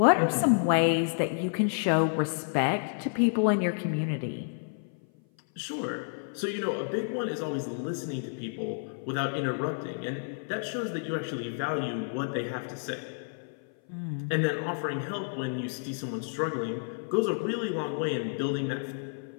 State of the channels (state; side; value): silent; right; 55 dB below the other